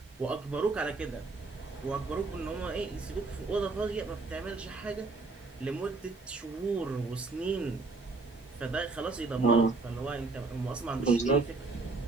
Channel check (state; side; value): quieter; left; 3.7 dB